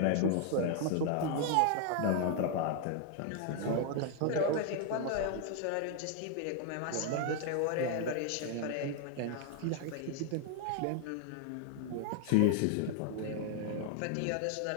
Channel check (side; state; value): both; different; correlation 0.00